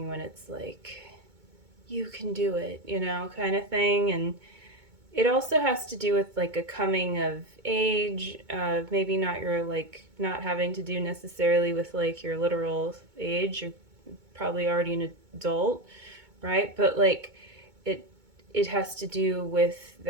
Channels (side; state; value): left; late; 2.2 ms